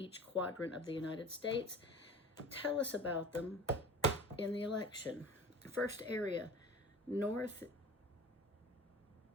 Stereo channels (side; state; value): both; normal; correlation 0.40